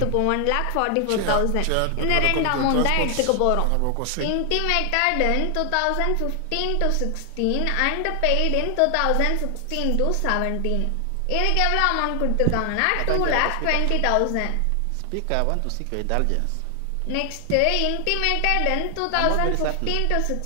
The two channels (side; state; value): both; different; correlation 0.00